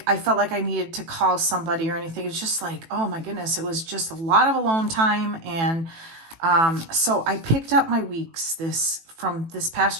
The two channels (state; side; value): late; left; 18 ms